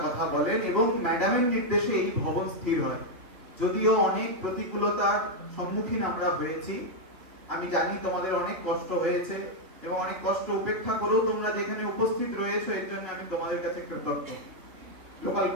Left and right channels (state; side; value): late; left; 3.2 ms